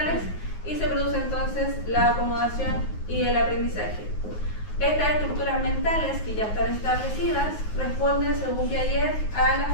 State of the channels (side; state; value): right; late; 9.5 ms